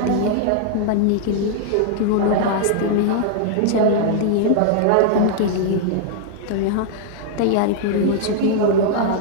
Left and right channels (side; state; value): both; different; correlation -0.01